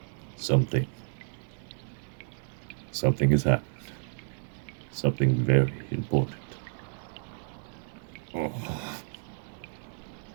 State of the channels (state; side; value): silent; left; 57 dB below the other